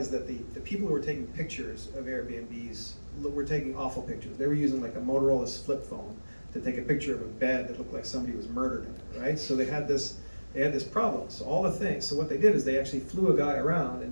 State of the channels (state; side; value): inverted; both; correlation -1.00